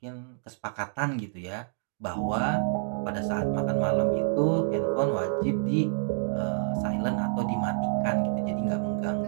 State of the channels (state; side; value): silent; left; digital silence